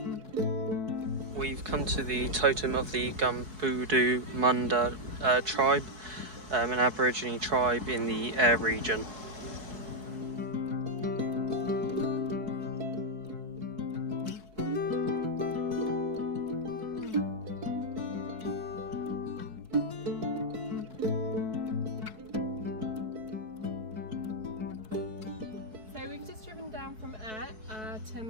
We've come to the totem of the Gumbudu Munda tribe, an Aborigine tribe in the Eyre region. From Eyre to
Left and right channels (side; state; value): left; late; 4.6 ms